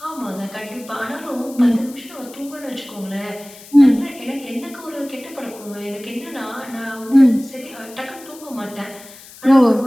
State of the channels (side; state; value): left; noise; hiss, 19 dB below the sound